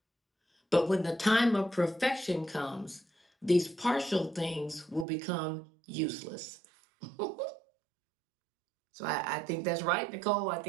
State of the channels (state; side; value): drops out; left; at 5.1 s